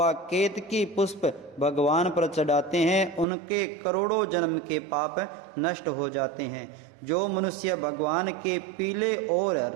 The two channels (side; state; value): left; drops out; at 3.2 s